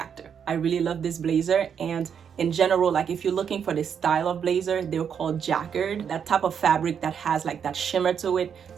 I really love this blazer. And in general, like, if you're looking for this style of blazer, they're called Jacquard, that type of fabric that has like that shimmer to it.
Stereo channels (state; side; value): quieter; left; 7.6 dB